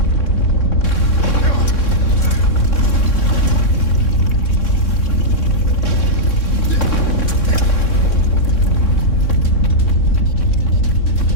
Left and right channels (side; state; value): right; late; 3.6 ms